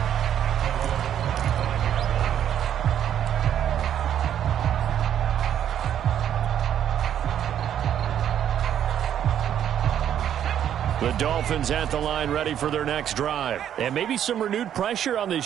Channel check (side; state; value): left; quieter; 10.0 dB